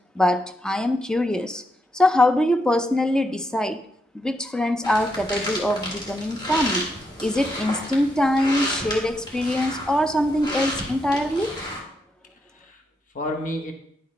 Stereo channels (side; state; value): both; normal; correlation 0.81